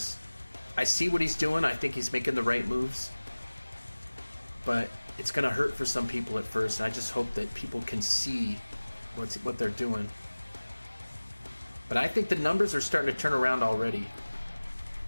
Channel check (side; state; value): both; inverted; correlation -1.00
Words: I see what he's doing. I think he's making the right moves, but it's going to hurt for some people at first, and I just hope that people can see what they're doing. But I think the numbers are starting to turn around already.